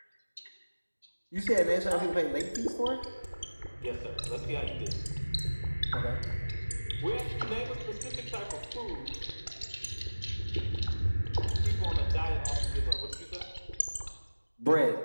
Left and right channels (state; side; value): inverted; both; correlation -1.00